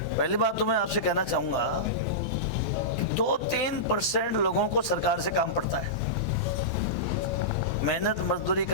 पहली बात तो मैं आपसे कहना चाहूँगा, 2-3% लोगों को सरकार से काम पड़ता है। मेहनत मजदूरी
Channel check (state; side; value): normal; both; correlation -0.15